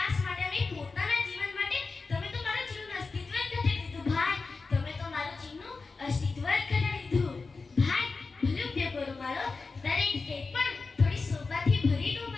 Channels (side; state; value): right; quieter; 4.2 dB